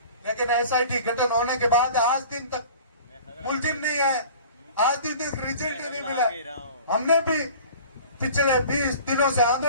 लेकिन एसआईटी गठन होने के बाद आज दिन तक मुलजिम नहीं है, आज दिन तक रिजल्ट नहीं मिला। हमने भी पिछले 20 दिनों से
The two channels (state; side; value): inverted; both; correlation -0.44